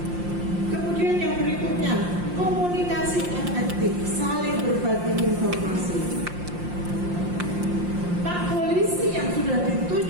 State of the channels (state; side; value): late; left; 5.7 ms